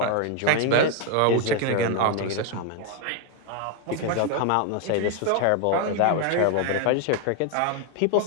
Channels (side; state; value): both; different; correlation 0.00